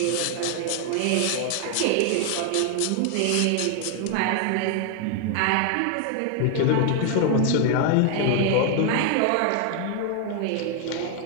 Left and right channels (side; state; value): both; different; correlation 0.00